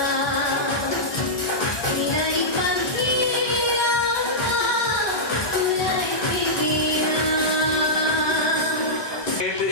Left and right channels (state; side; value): late; right; 1.2 ms